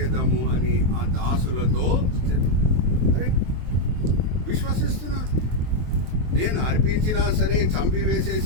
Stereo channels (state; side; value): late; left; 23 ms